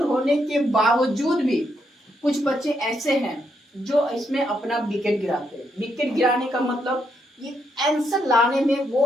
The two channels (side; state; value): both; normal; correlation 0.77